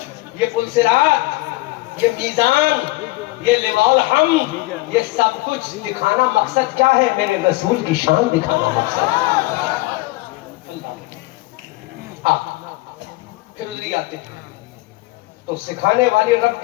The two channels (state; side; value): quieter; right; 20.6 dB